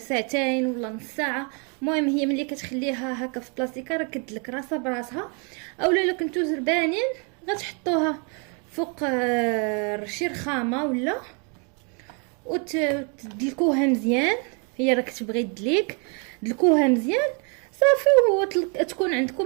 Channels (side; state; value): left; quieter; 36.4 dB